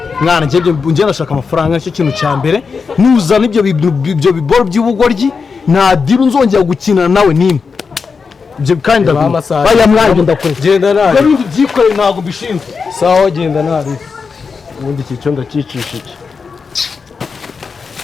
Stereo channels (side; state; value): right; quieter; 5.2 dB